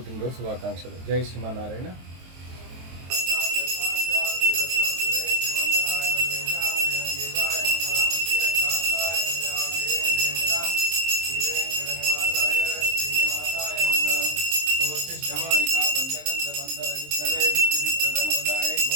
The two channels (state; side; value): late; left; 23 ms